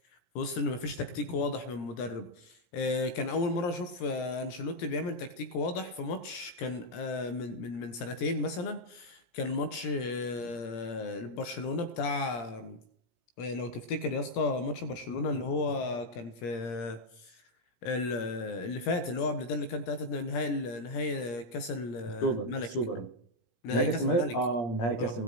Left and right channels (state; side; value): late; right; 17 ms